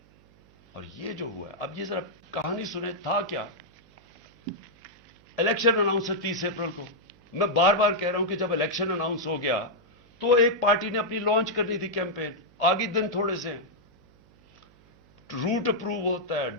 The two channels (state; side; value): noise; right; hum, 29 dB below the sound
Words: اور یہ جو ہوا ہے, اب یہ ذرا کہانی سنیں, تھا کیا. الیکشن اناؤنس ہے 30 اپریل کو. میں بار بار کہہ رہا ہوں کہ جب الیکشن اناؤنس ہو گیا تو ایک پارٹی نے اپنی لانچ کرنی تھی کیمپین. آگے دن تھوڑے سے ہیں, روٹ اپروو ہوتا ہے,